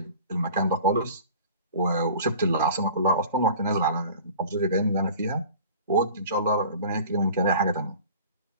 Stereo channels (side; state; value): both; inverted; correlation -0.43